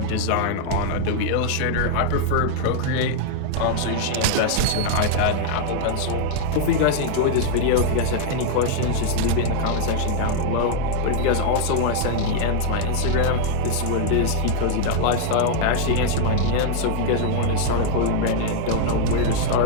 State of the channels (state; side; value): different; both; correlation 0.00